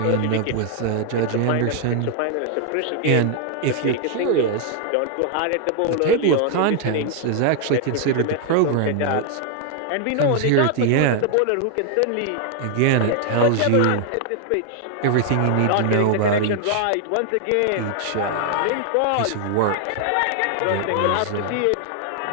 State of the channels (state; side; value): different; both; correlation 0.00